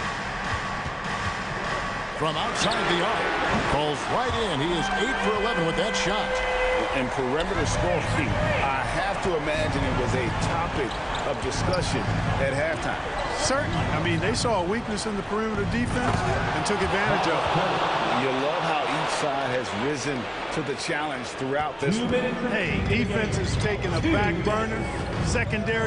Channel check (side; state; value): both; identical; correlation 1.00